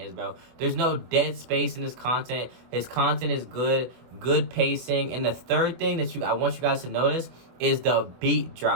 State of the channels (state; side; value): late; left; 24 ms